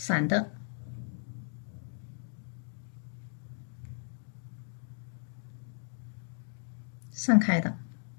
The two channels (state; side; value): silent; right; digital silence